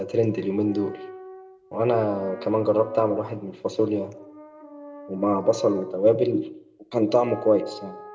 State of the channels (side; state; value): both; identical; correlation 1.00